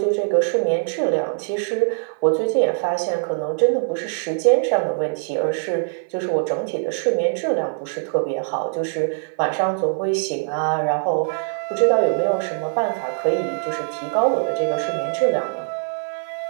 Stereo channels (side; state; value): left; silent; 56 dB below the other